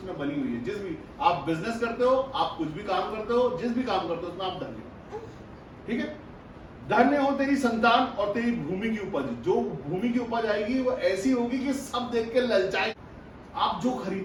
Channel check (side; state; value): both; identical; correlation 1.00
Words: बनी हुई है। जिस भी आप बिजनेस करते हो, आप कुछ भी काम करते हो, जिस भी काम करते हो उसमें आप धन्य हो, ठीक है। धन्य हो तेरी संतान और तेरी भूमि की उपज, जो भूमि की उपज आएगी वो ऐसी होगी कि सब देख के ललचाए। आप जो